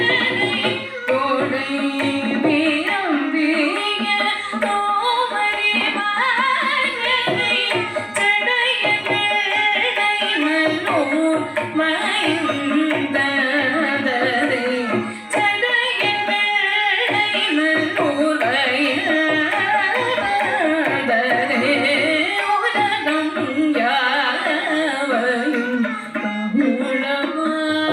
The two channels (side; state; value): both; identical; correlation 1.00